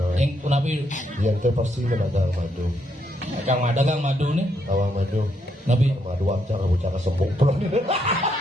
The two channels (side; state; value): both; normal; correlation 0.76